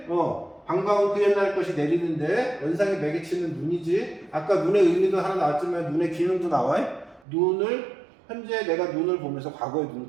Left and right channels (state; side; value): drops out; left; at 7.2 s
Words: 반가운 그 옛날 것이 내리는데 연상의 매개체는 눈이지. 아까 눈의 의미도 하나 나왔지만 눈의 기능도 나와. 현재 내가 눈을 보면서 과거의